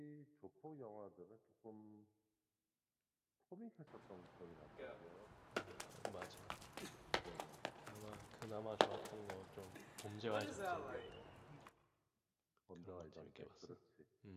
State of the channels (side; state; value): both; identical; correlation 1.00